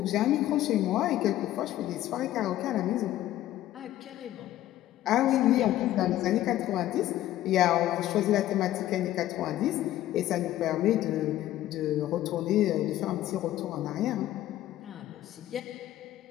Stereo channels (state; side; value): quieter; right; 13.8 dB